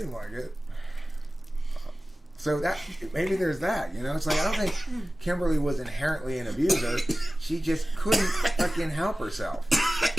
like it. So that maybe there's that, It's like I don't think Kimberly was inherently an abuser. She just couldn't fucking help herself.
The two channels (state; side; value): normal; both; correlation 0.96